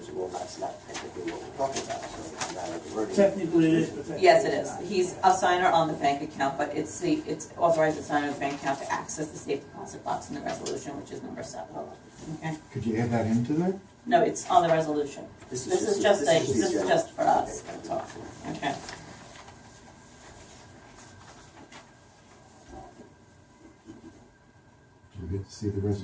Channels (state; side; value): identical; both; correlation 1.00